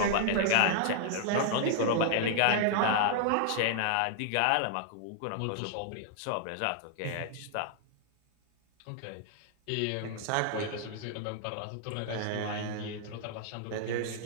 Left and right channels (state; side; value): different; both; correlation -0.01